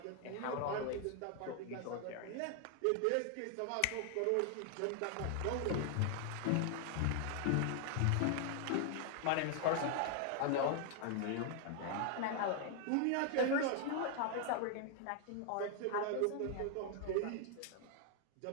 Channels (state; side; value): different; both; correlation 0.00